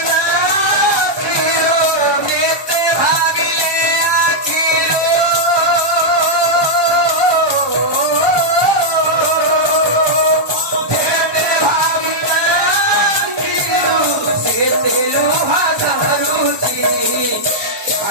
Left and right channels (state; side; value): late; left; 1.2 ms